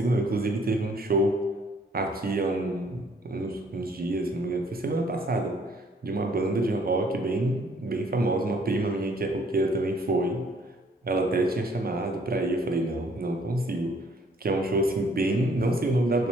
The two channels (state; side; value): normal; both; correlation 0.62